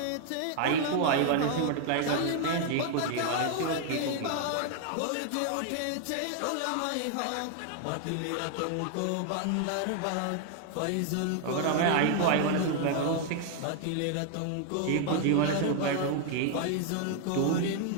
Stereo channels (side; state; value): both; different; correlation 0.00